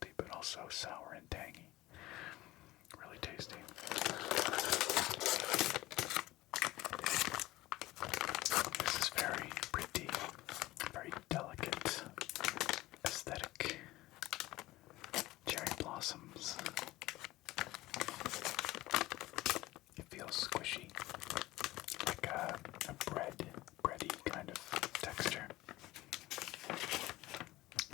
but also sour and tangy. Really tasty. This is very pretty, very delicate, aesthetic. Cherry blossoms. It feels squishy, like a bready kind of texture.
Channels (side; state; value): right; quieter; 17.9 dB